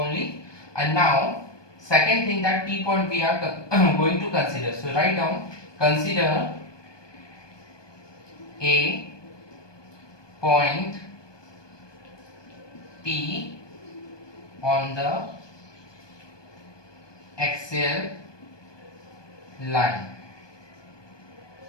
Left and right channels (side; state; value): right; late; 1.2 ms